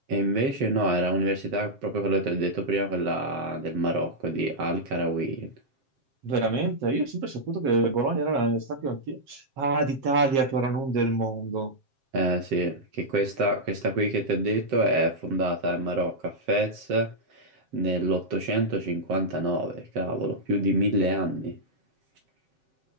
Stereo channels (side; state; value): left; late; 7.5 ms